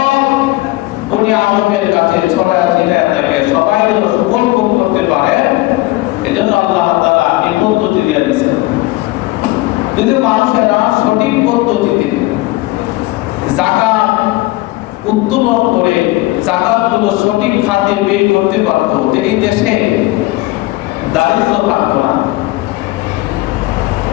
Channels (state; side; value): quieter; right; 19.8 dB